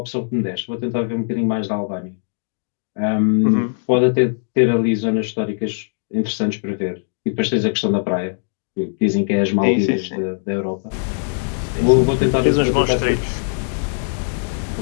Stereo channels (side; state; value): right; silent; digital silence